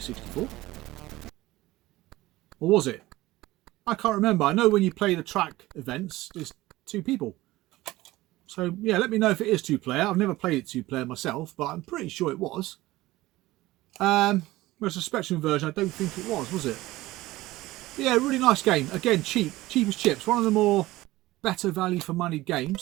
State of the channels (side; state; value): left; quieter; 18.0 dB